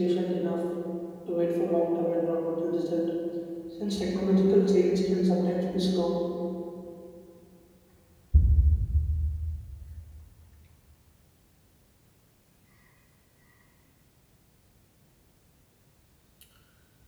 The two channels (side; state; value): both; identical; correlation 1.00